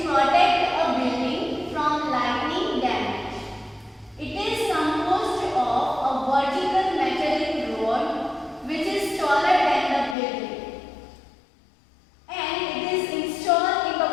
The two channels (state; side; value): drops out; right; at 10.2 s